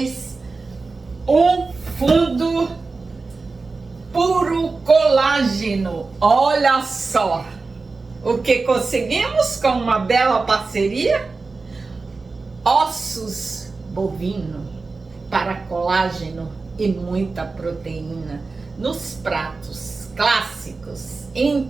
um fundo puro colágeno. Olha só o que conseguimos com uma bela parceria. Ossos bovino para colágeno e muita proteína nos pratos clássicos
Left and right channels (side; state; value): left; quieter; 4.0 dB